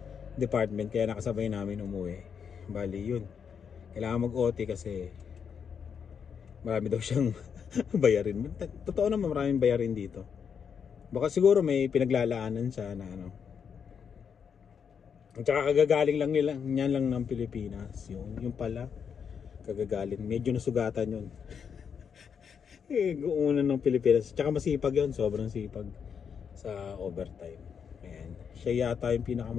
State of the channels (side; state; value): right; quieter; 7.0 dB